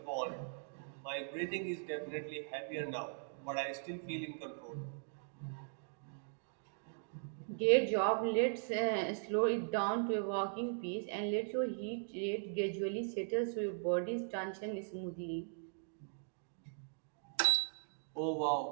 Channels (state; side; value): silent; left; digital silence